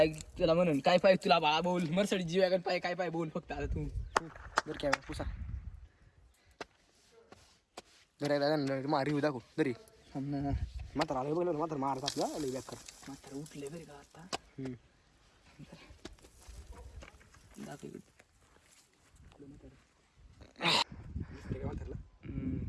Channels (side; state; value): both; identical; correlation 1.00